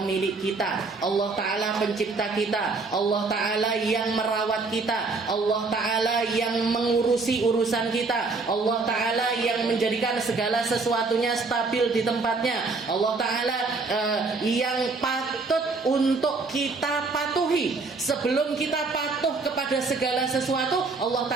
kita, Allah Ta'ala pencipta kita, Allah Ta'ala yang merawat kita, Allah Ta'ala yang mengurusi urusan kita, Allah Ta'ala yang menjadikan segala sesuatunya stabil di tempatnya, Allah Ta'ala yang patut untuk kita patuhi. Sebelum kita patuh kepada segala sesuatu, Allah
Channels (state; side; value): quieter; left; 3.9 dB